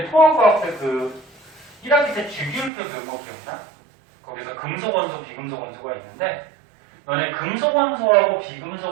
통합과학 때 그 1학기 때 주기율표 배운 거 기억나? 거기서 금속 원소, 비금속 원소가 있는데, 너네 금속 원소하고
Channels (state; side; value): drops out; left; at 2.7 s